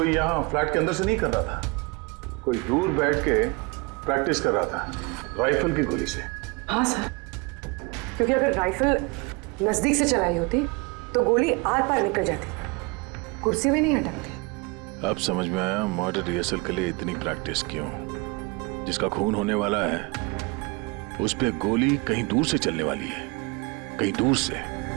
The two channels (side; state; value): left; quieter; 27.8 dB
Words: यहाँ फ्लैट के अंदर से नहीं कर रहा था, कोई दूर बैठ के प्रैक्टिस कर रहा था राइफल की गोली से। हाँ सर, क्योंकि अगर राइफल नजदीक से चलाई होती तो गोली आर पार निकल जाती, कुर्सी भी नहीं हटकती। अब समझ में आया मर्डर रिहर्सल के लिए इतनी प्रैक्टिस क्यों। जिसका खून होने वाला है उस पे गोली कहीं दूर से चलने वाली है, कहीं दूर से।